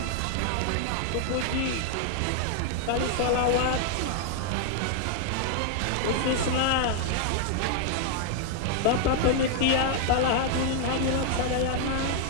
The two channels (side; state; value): both; different; correlation 0.00